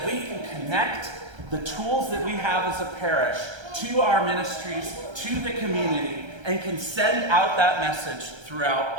we can connect the tools that we have as a parish to our ministries, to the community, and can send out that message throughout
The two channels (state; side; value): late; left; 1.3 ms